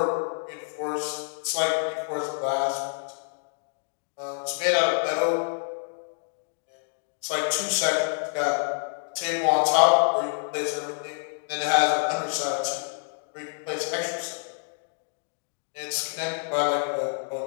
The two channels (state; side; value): silent; right; digital silence